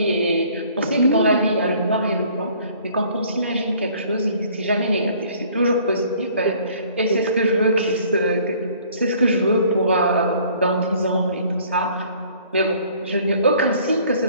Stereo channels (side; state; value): both; inverted; correlation -0.56